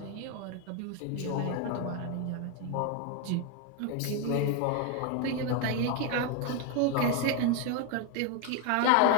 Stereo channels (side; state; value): both; different; correlation 0.01